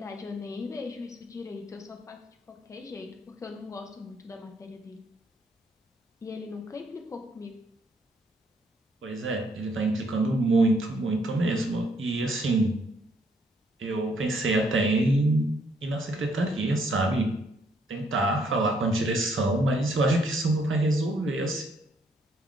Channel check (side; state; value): both; normal; correlation 0.70